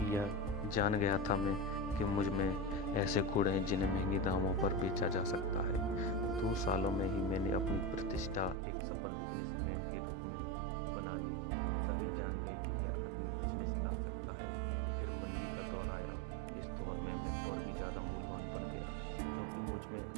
यह जान गया था मैं कि मुझ में ऐसे गुण हैं जिन्हें महंगे दामों पर बेचा जा सकता है। 2 सालों में ही मैंने अपनी प्रतिष्ठा एक सफल बिजनेसमैन के रूप में बना ली। सभी जान गए कि यह आदमी बिजनेस ला सकता है। फिर मंदी का दौर आया। इस दौर में मैं और भी ज़्यादा मूल्यवान बन गया क्योंकि मुझ में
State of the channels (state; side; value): drops out; left; at 8.6 s